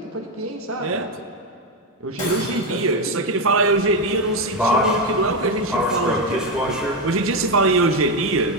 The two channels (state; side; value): normal; both; correlation 0.08